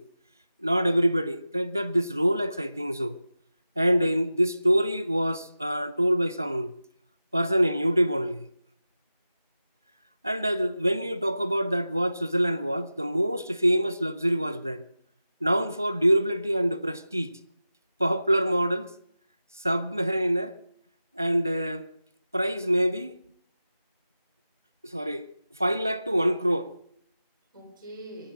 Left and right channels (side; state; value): both; inverted; correlation -0.95